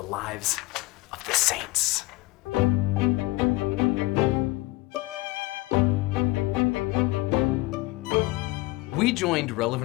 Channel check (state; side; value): quieter; right; 20.6 dB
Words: lives of the saints. We joined